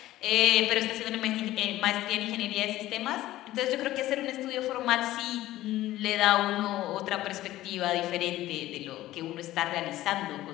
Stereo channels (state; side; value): quieter; right; 15.4 dB